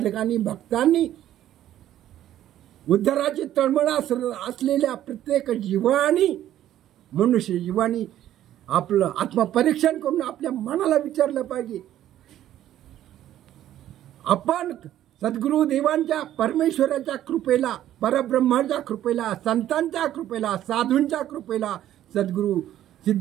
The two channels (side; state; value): left; quieter; 12.3 dB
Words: भक्तांनी, उद्धाराची तळमळ असलेल्या प्रत्येक जीवानी, मनुष्य जीवानी आपलं आत्मपरीक्षण करून आपल्या मनाला विचारलं पाहिजे. आपण सद्गुरू देवांच्या, परमेश्वराच्या कृपेला, परब्रह्माच्या कृपेला, संतांच्या कृपेला, साधूंच्या कृपेला, सद्गुरू